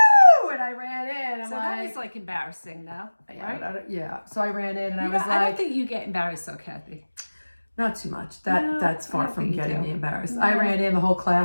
And I ran in. That was embarrassing, though, right? Yeah. So I ran in, and I was like, I don't think you get embarrassed, though, Kathy. Not too much. That's far from getting me embarrassed. No. I ran in, the whole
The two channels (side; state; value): both; inverted; correlation -1.00